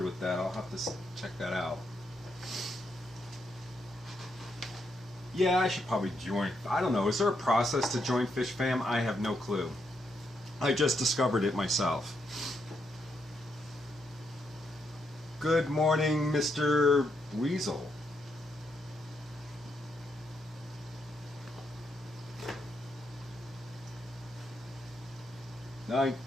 with that. I'll have to check that out. Yeah, I should probably join. I don't know. Is there a process to join Fish Fam? I have no clue. I just discovered it myself. Good morning, Mr. Weasel.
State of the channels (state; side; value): normal; both; correlation 0.79